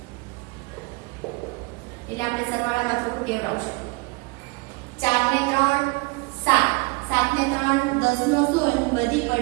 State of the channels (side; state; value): left; quieter; 27.4 dB